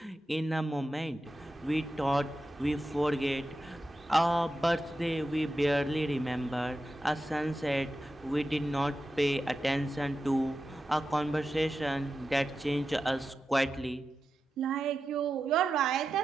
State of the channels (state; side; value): normal; both; correlation 0.91